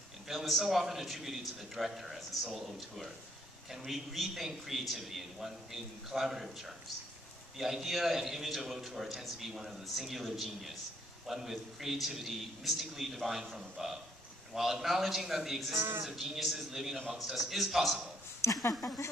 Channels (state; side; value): normal; both; correlation 0.67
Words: in film is so often attributed to the director as the sole auteur. Can we rethink creativity in collaborative terms? The idea and image of auteur tends to be one of the singular genius, one with creativity mystically divine from above. And while acknowledging that the existence of geniuses living amongst us is possible,